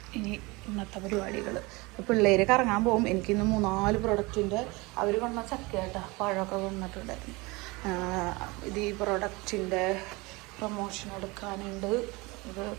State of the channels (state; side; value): quieter; left; 24.4 dB